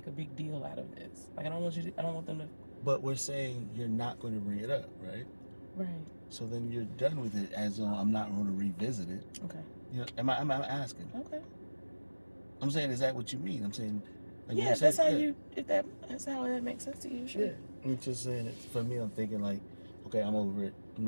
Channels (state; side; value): inverted; both; correlation -1.00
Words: a big deal out of this. Like, I don't want them to. But we're saying you're not going to bring it up, right? Right. So then you're done with it, as though I'm not going to revisit it. Okay. Am I asking? Okay. I'm saying, is that what you mean? I'm saying, like, yeah, that's how that's how that makes sense to you. Sure. Yeah. I'm just saying it. For me, I'm thinking like, okay, I'm over it. I'm